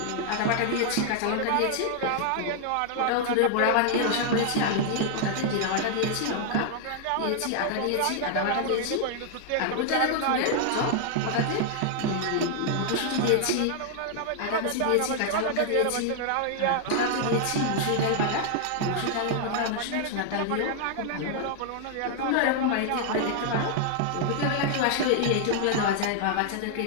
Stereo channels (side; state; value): both; different; correlation 0.00